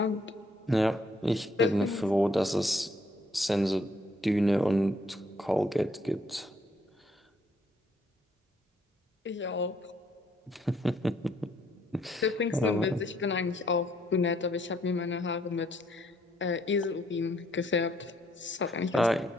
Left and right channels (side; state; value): both; normal; correlation 0.69